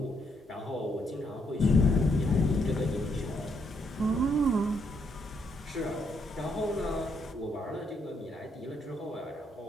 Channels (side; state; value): both; normal; correlation 0.75